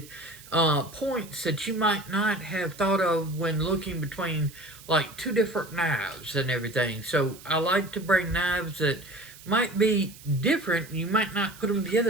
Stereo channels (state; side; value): noise; right; hiss, 19 dB below the sound